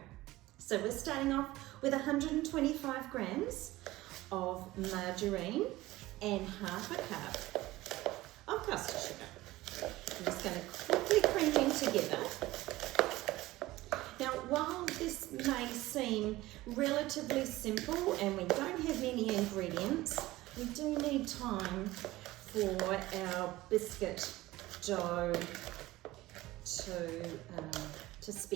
So we're starting off with 125 grams of margarine and half a cup of custard sugar. I'm just going to quickly cream them together. Now, while this may seem relatively simple and we don't have many ingredients, we do need time for our biscuit dough to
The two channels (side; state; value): left; quieter; 17.9 dB